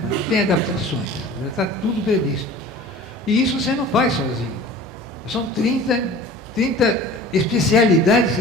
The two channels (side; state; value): both; normal; correlation 0.42